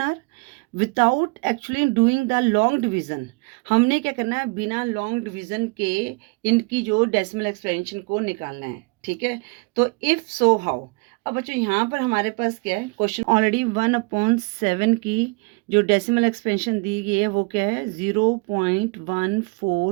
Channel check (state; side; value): quieter; left; 29.0 dB